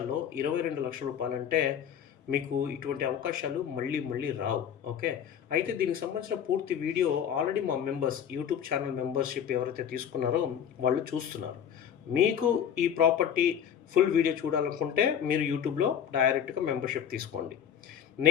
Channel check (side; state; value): right; quieter; 8.8 dB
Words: 22 లక్షల రూపాయలంటే మీకు ఇటువంటి అవకాశాలు మళ్ళీ మళ్ళీ రావు. ఓకే. అయితే దీనికి సంబంధించిన పూర్తి వీడియో ఆల్రెడీ మా మెంబర్స్ యూట్యూబ్ ఛానల్ మెంబర్షిప్ ఎవరైతే తీసుకున్నారో వాళ్ళు చూస్తున్నారు. మీకు ఈ ప్రాపర్టీ ఫుల్ వీడియో చూడాలనుకుంటే మీరు యూట్యూబ్లో డైరెక్ట్గా మెంబర్షిప్ తీసుకోండి.